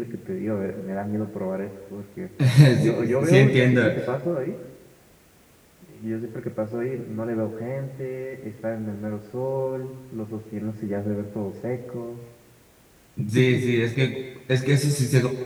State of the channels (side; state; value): both; identical; correlation 1.00